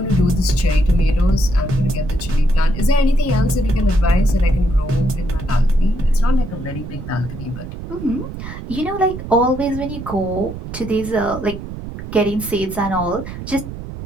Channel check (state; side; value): noise; right; rumble, 9 dB below the sound